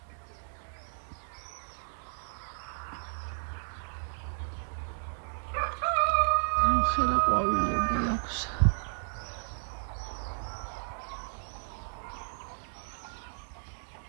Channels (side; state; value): left; silent; digital silence